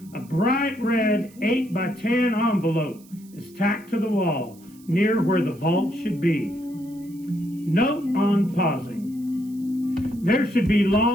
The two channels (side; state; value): right; noise; hiss, 26 dB below the sound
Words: A bright red 8x10 envelope is tacked to the wall near where the vault should be. Note on pausing. There should be